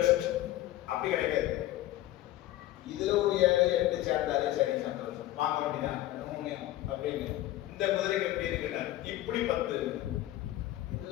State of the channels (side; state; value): right; quieter; 15.0 dB